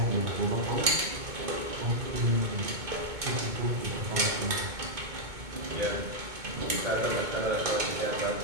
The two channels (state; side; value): late; left; 2.2 ms